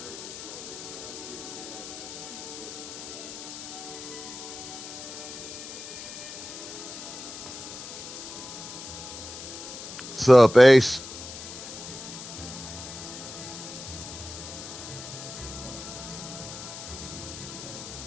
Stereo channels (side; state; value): left; noise; hiss, 10 dB below the sound